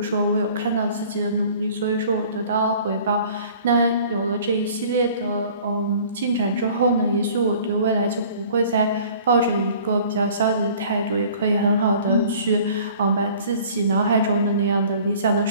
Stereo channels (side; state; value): both; inverted; correlation -0.50